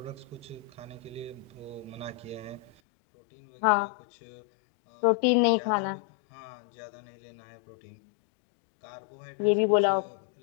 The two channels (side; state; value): right; drops out; at 2.8 s